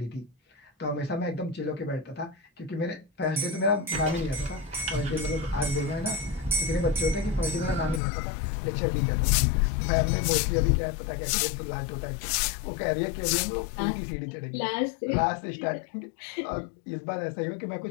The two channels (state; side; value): drops out; right; at 8.0 s